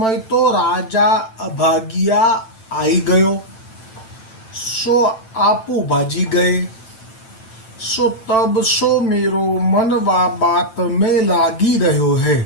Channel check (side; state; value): right; late; 9.0 ms